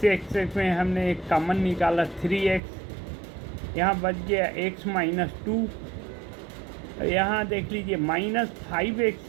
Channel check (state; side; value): drops out; left; at 2.6 s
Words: में हमने एक कॉमन निकाला 3x, यहाँ बच गया x माइनस 2। यहाँ देख लीजिए -5x